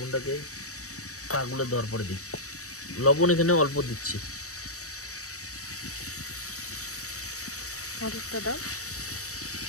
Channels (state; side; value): late; right; 0.65 ms